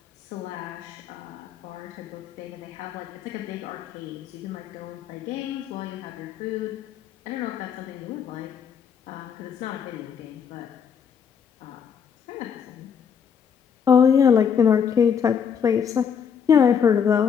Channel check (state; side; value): quieter; right; 7.3 dB